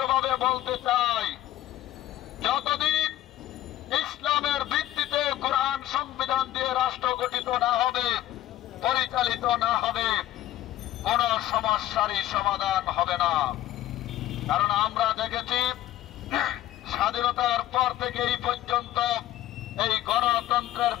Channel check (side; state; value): right; quieter; 14.0 dB